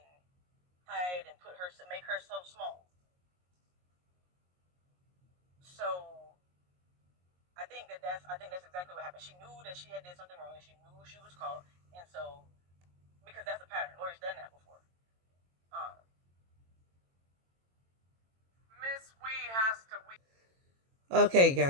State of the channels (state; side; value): late; left; 22 ms